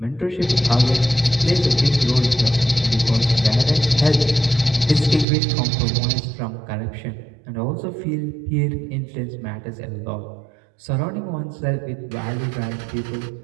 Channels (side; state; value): left; drops out; at 5.2 s